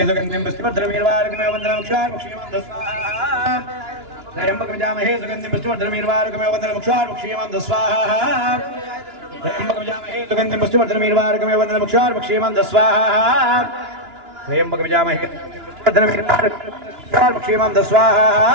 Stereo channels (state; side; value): late; left; 2.9 ms